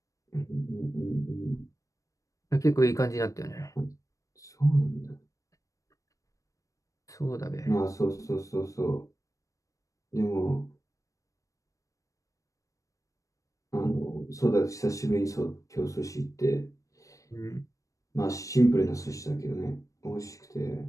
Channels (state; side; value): late; right; 0.16 ms